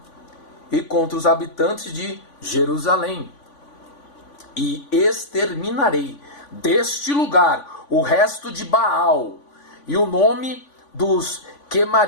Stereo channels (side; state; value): right; late; 3.5 ms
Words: e contra os habitantes de Jerusalém, e exterminarei deste lugar o resto de Baal e o nome dos